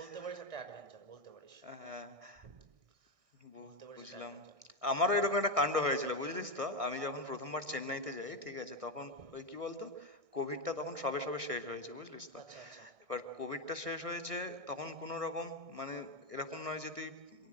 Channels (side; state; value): left; late; 1.6 ms